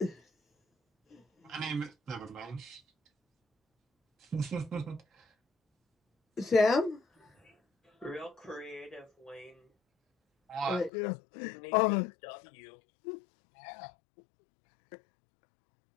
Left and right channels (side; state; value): right; drops out; at 10.9 s